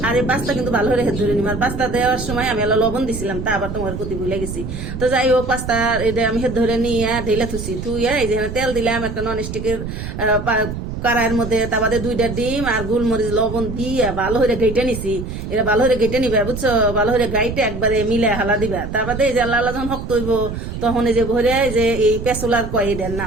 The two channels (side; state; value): right; noise; rumble, 7 dB below the sound